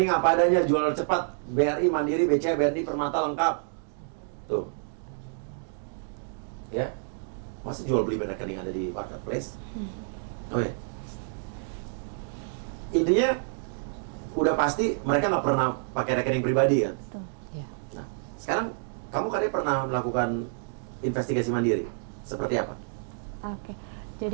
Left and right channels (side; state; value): left; silent; digital silence